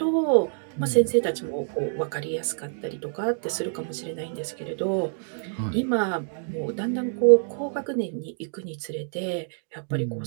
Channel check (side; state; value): left; silent; 60 dB below the other